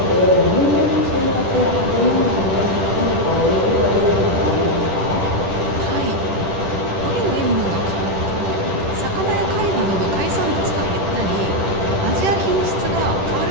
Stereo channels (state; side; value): late; left; 10 ms